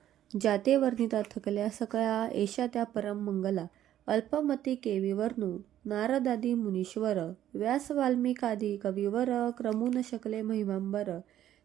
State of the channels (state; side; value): quieter; left; 11.9 dB